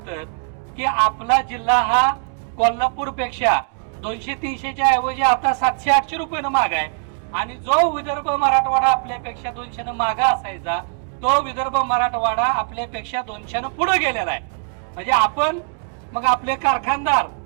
की आपला जिल्हा हा कोल्हापूर पेक्षा 200-300च्या ऐवजी आता 700-800 रुपयानं महाग आहे. आणि जो विदर्भ मराठवाडा आपल्यापेक्षा 200 मागा असायचा तो विदर्भ मराठवाडा आपल्यापेक्षा 200 पुढे गेलेला आहे. म्हणजे आपण मग आपले कारखानदार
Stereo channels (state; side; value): quieter; left; 38.5 dB